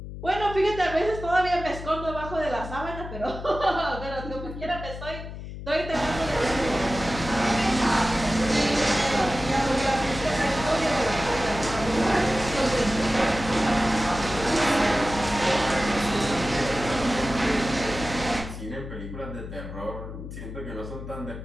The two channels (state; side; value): noise; left; hum, 10 dB below the sound